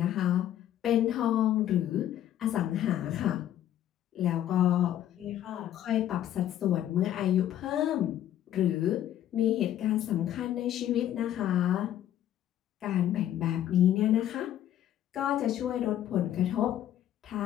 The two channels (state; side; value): quieter; right; 11.6 dB